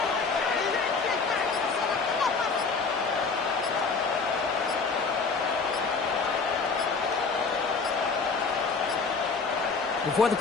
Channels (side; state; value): right; quieter; 4.6 dB